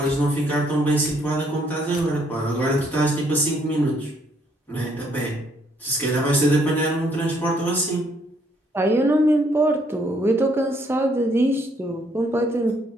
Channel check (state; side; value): normal; both; correlation 0.68